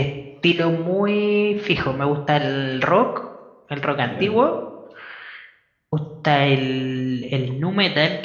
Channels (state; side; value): identical; both; correlation 1.00